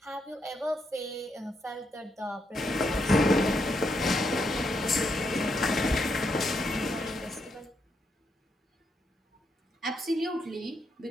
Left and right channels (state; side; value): normal; both; correlation 0.79